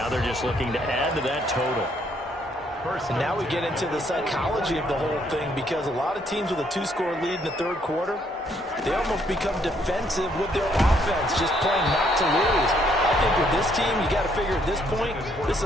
they're just looking to add to that total. And now we get into the psychology of the whole thing, because a lot of teams with a 2-score lead in the third quarter, they almost become defensive with their offense, just playing not to lose. I think with this team, you got to figure at this point, this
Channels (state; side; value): normal; both; correlation 0.69